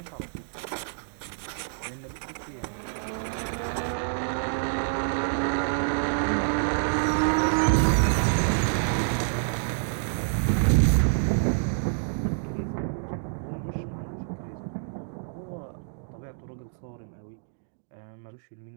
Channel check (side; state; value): left; silent; digital silence